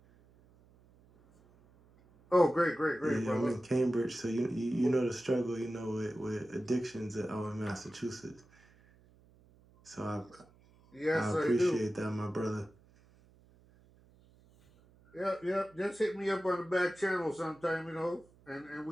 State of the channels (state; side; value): noise; right; hum, 28 dB below the sound